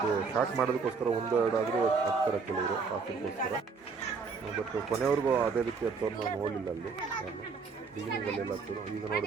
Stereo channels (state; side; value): quieter; left; 5.0 dB